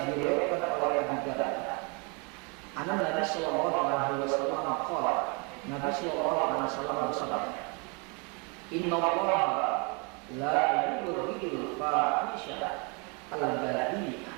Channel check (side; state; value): left; quieter; 32.6 dB